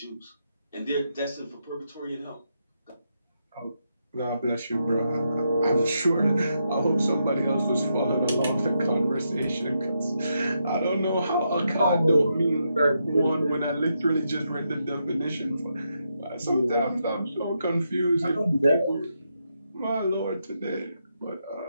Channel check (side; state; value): both; inverted; correlation -0.82